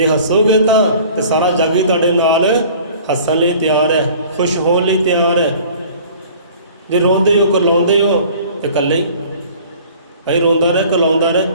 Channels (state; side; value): inverted; both; correlation -0.48